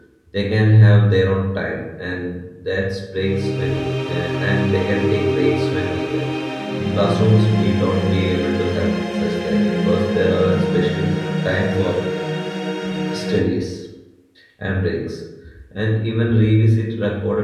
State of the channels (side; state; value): both; identical; correlation 1.00